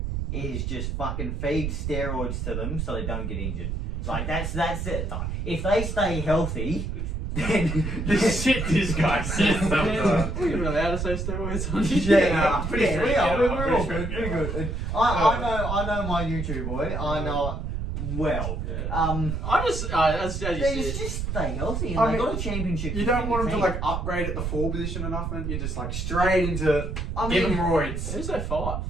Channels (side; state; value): right; noise; rumble, 3 dB below the sound